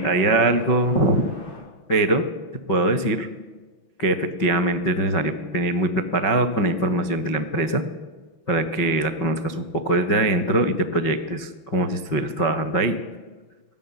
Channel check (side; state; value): right; late; 6.0 ms